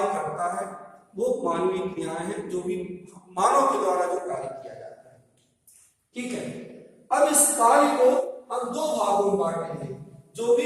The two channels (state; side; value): identical; both; correlation 1.00